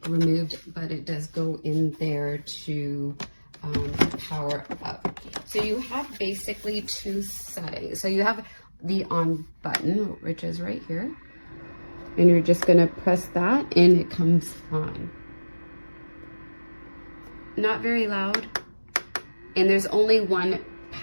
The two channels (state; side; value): inverted; both; correlation -1.00